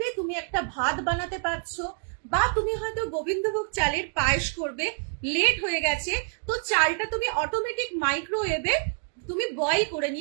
তুমি একটা ভাত বানাতে পারছো, বা তুমি হয়তো গোবিন্দভোগ চালের পায়েস করবে, লেট হয়ে গেছে, তো চালটা তুমি অটোমেটিক মাইক্রোওয়েভে তুমি বয়েল করে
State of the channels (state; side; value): silent; left; 60 dB below the other